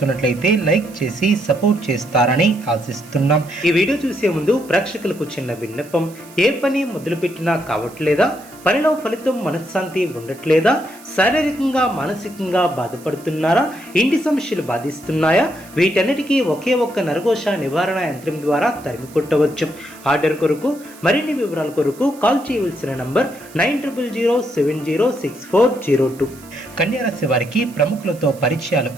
లైక్ చేసి సపోర్ట్ చేస్తారని ఆశిస్తున్నాం. ఈ వీడియో చూసే ముందు ప్రేక్షకులకు చిన్న విన్నపం. ఏ పని మొదలుపెట్టినా కావట్లేదా? పనిలో ఫలితం మనశ్శాంతి ఉండట్లేదా? శారీరకంగా మానసికంగా బాధపడుతున్నారా? ఇంటి సమస్యలు బాధిస్తున్నాయా? వీటన్నిటికీ ఒకే ఒక్క నరఘోష నివారణ యంత్రం ద్వారా తరిమి కొట్టవచ్చు. ఆర్డర్ కొరకు మరిన్ని వివరాల కొరకు కాల్ చేయవలసిన నంబర్ 9070706402. కన్యారాశి వారికి ప్రముఖులతో పరిచయాలు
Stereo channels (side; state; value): right; noise; hiss, 22 dB below the sound